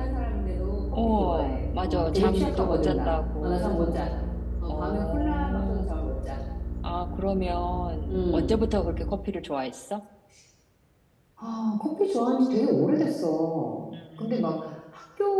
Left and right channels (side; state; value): both; identical; correlation 1.00